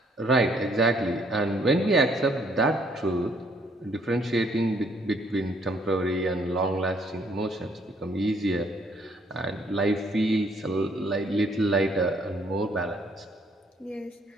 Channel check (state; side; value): normal; both; correlation 0.66